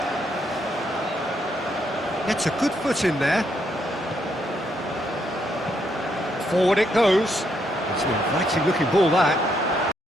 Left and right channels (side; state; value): both; normal; correlation 0.76